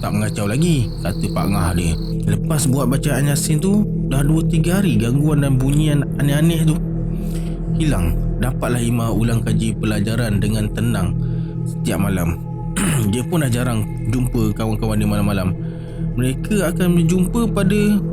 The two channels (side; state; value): both; identical; correlation 1.00